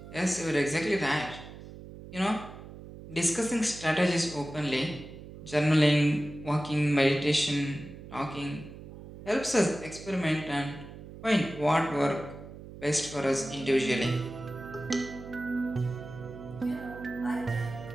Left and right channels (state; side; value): noise; right; hum, 14 dB below the sound